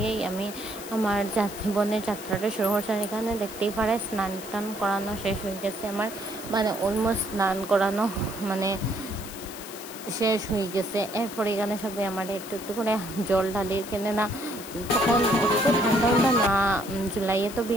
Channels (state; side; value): noise; left; hiss, 13 dB below the sound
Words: আমি আমার জীবনের যাত্রাটা শুরু করছি। আর এখানে দেখতেই পারে স্নান টান করানো শেষ হয়ে গেছে আমার, মানে অলমোস্ট স্নান করানো মানে শেষ হয়ে গেছে। এরপরে এখানে সবাই আমার একটু একটু করে জল ঢালি, কেনে না তখন ঠান্ডা না, জুলাইয়ে তো